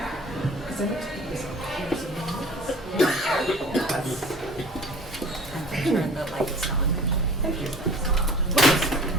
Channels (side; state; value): both; normal; correlation 0.45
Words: Turn the lights on. Thank you.